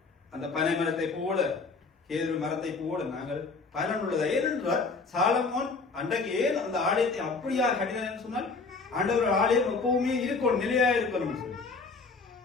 அந்த பனை மரத்தை போல, கேதுரு மரத்தை போல நாங்கள் பயனுள்ளதா. ஏனென்றால் சாலமோன் அன்றைக்கு ஏன் அந்த ஆலயத்தை அப்படியா கட்டினான்னு சொன்னால், ஆண்டவர் ஆலயம் எப்பவுமே இருக்கணும், நிலையா இருக்கணும் சொல்லி,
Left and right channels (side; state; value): right; quieter; 4.2 dB